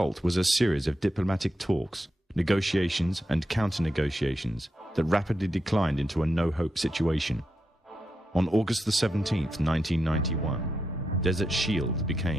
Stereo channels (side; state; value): both; normal; correlation 0.85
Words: was a series of diplomatic talks, negotiations and counter-negotiations that rapidly declined into a no-hope situation. On August the 17th, 1991, Desert Shield